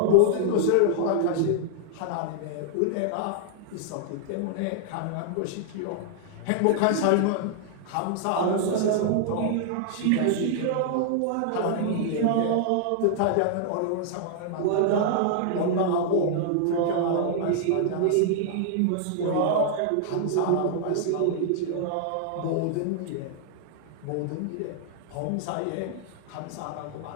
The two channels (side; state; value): both; different; correlation -0.01